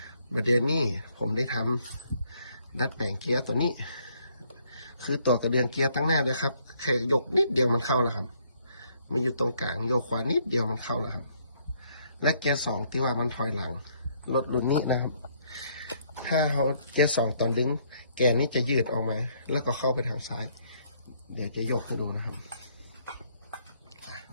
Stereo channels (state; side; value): inverted; both; correlation -0.68